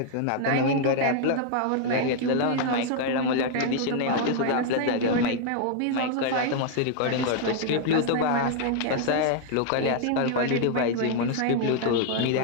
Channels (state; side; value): different; both; correlation 0.00